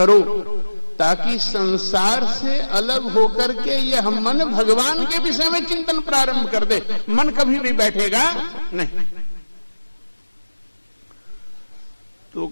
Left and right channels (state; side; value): inverted; both; correlation -1.00